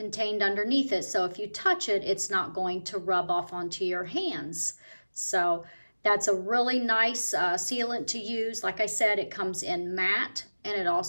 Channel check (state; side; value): inverted; both; correlation -1.00